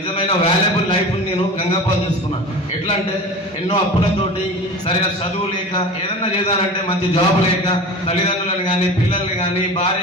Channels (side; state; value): both; normal; correlation 0.35